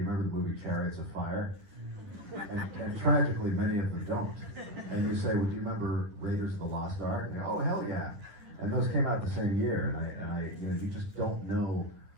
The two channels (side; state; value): left; late; 10 ms